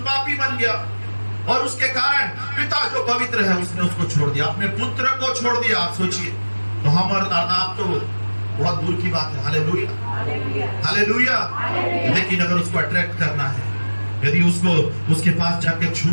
बन गया, और उसके कारण पिता जो पवित्र है उसने उसको छोड़ दिया, अपने पुत्र को छोड़ दिया। आप सोचिए, तो हम और आप तो बहुत दूर की बात है। Hallelujah, hallelujah. लेकिन अगर उसको अट्रैक्ट करना है, यदि उसको उसके पास जाके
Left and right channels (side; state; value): both; inverted; correlation -1.00